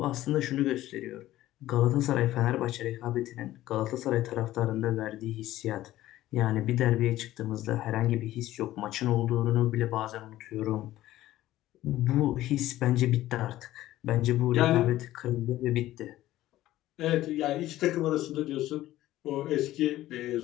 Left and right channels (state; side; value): quieter; right; 15.0 dB